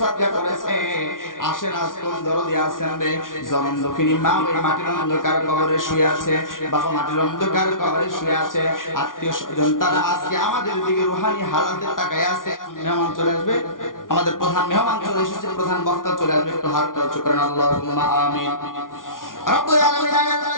সাদকা করেছে। আসেন আজ কোন দরদি আছেন রে, জনম দক্ষিণী মা ওই মাটির অন্ধকার কবরে শুয়ে আছে, বাবা মাটির অন্ধকার কবরে শুয়ে আছে, আত্মীয় স্বজন তারা আজকে আমাদের দিকে রুহানি হালাতে তাকায় আছে। মেহমান চলে আসবে, আমাদের প্রধান মেহমান চলে এসেছে, প্রধান বক্তা চলে আসবে, একটু হাতটা উঁচু করেন, আল্লাহুম্মা আমিন। রব্বুল আলামিন আল্লাহ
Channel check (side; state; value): right; late; 0.89 ms